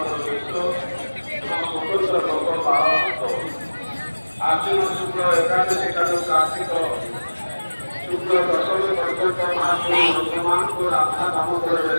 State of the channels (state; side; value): inverted; both; correlation -1.00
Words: ବେଶ ଏବଂ ସ୍ୱତନ୍ତ୍ର ଭୋଗ ପାଳନ ହେବ। ଆଶ୍ୱିନ ଶୁକ୍ଳ ଏକାଦଶୀ ଠାରୁ କାର୍ତ୍ତିକ ଶୁକ୍ଳ ଦଶମୀ ପର୍ଯ୍ୟନ୍ତ ମହାପ୍ରଭୁ ଭକ୍ତମାନଙ୍କୁ ରାଧା ଦାମୋଦର